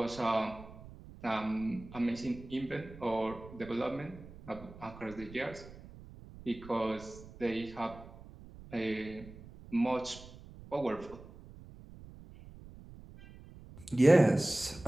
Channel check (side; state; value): right; noise; rumble, 17 dB below the sound